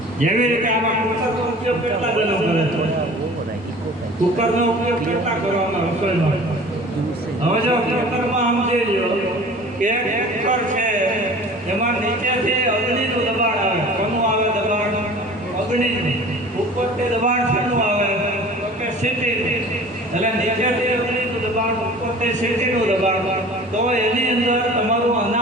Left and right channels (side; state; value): both; normal; correlation 0.43